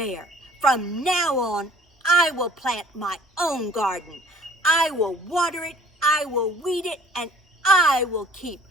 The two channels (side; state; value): both; normal; correlation 0.54